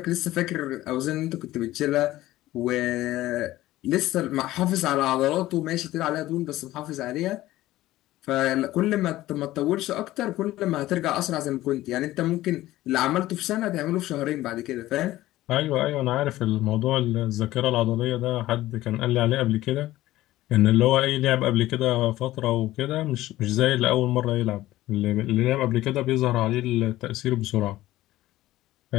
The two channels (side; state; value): right; quieter; 15.9 dB